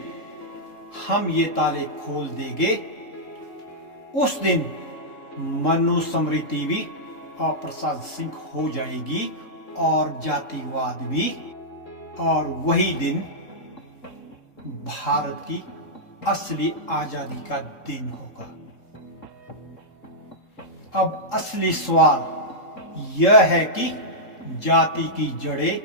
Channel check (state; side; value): late; right; 3.7 ms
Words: हम ये ताले खोल देंगे, उस दिन मनुस्मृति भी अप्रासंगिक हो जाएगी और जातिवाद भी, और वही दिन भारत की असली आजादी का दिन होगा। अब असली सवाल यह है कि जाति की जड़ें